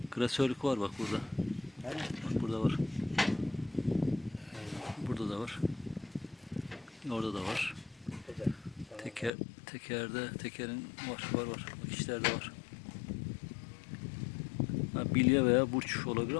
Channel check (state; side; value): drops out; right; at 9.3 s